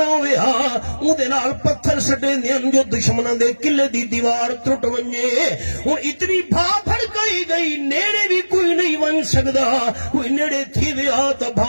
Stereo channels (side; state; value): both; inverted; correlation -1.00